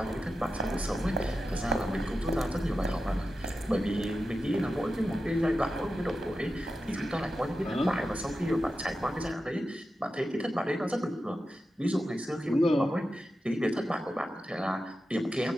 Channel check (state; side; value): normal; both; correlation 0.91